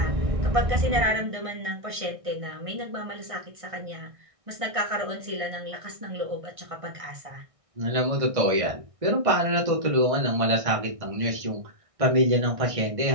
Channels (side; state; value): left; late; 1.6 ms